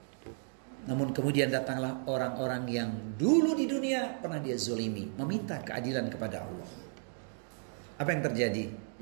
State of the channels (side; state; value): left; silent; 55 dB below the other